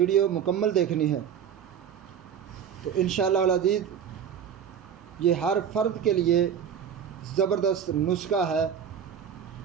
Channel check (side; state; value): left; quieter; 8.2 dB